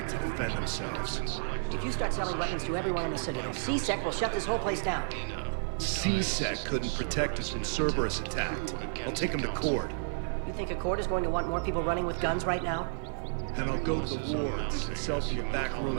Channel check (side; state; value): left; silent; digital silence